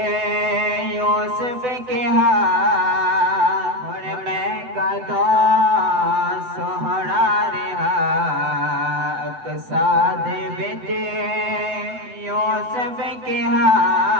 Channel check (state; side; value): late; left; 8.0 ms